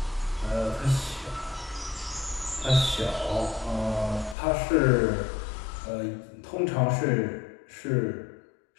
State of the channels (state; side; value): drops out; right; at 4.4 s